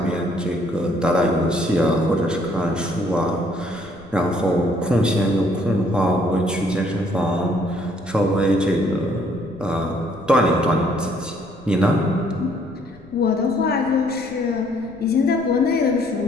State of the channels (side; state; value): left; noise; rumble, 23 dB below the sound